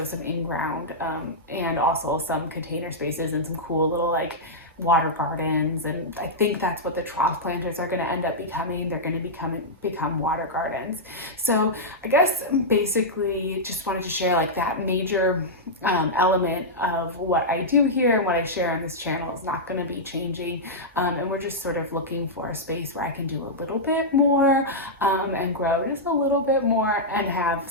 some in-ground and also some container spaces and some cool little like water gardens. And I think that's what the trough planters are going to end up becoming. They're going to become water gardens. So I guess basically just wanted to share like that major element of what I do here and what I share on this channel is not going to be changing. And we're just sort of looking for a space where I can do a little bit more and grow just a little bit more and have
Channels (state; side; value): normal; both; correlation -0.09